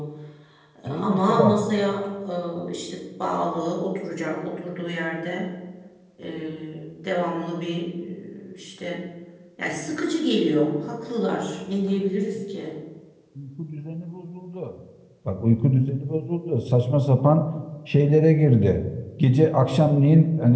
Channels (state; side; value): identical; both; correlation 1.00